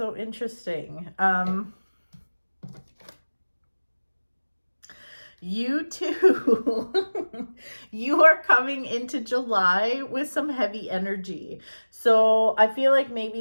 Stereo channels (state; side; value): inverted; both; correlation -1.00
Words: interesting. You too. You are coming into July with some heavy energy. So I feel like maybe